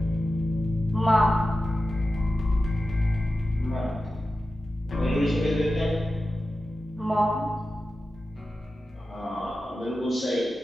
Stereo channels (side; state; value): both; normal; correlation 0.93